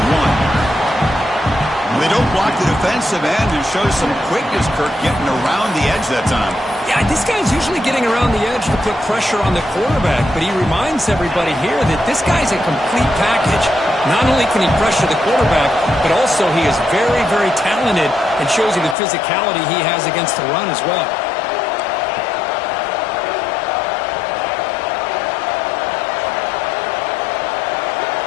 1. They don't block the defensive end and show some quickness, Kirk, getting around the edge that time. Yeah, this guy's usually getting around the edge to put pressure on the quarterback, but he reminds everybody here that this guy's a complete package. Not only can he pressure the quarterback, but also he is very, very talented and shows you the physicality he has against the run as well.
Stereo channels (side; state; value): right; drops out; at 18.9 s